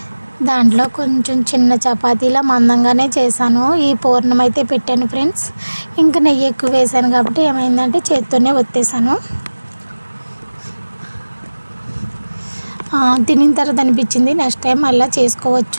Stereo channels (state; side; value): inverted; both; correlation -1.00